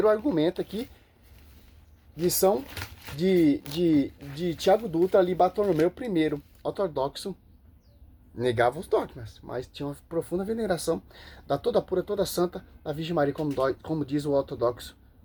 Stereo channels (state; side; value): identical; both; correlation 1.00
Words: argumento aqui, lição de Tiago Dutra, ali Bartolomeu I, ortodoxo, negava os dogmas, mas tinha uma profunda veneração da toda pura, toda santa, da Virgem Maria, como diz o ortodoxo